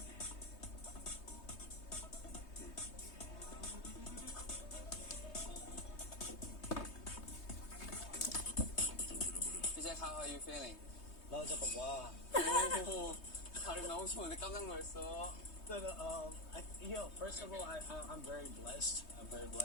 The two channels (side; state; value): right; late; 3.2 ms